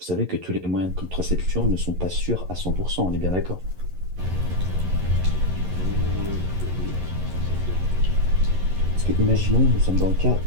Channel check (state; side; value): late; left; 11 ms